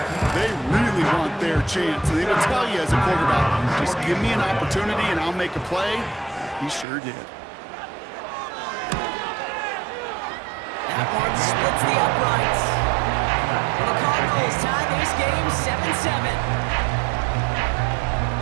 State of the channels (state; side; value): drops out; left; at 6.9 s